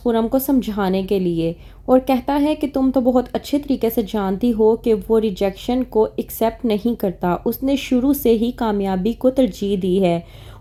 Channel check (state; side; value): identical; both; correlation 1.00